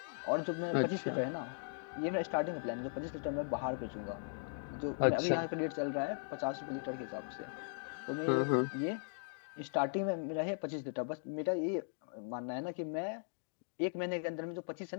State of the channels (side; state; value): right; silent; digital silence